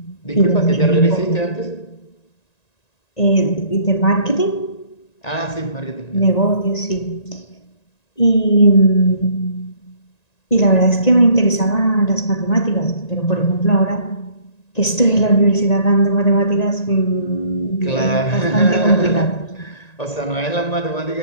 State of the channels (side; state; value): right; late; 1.9 ms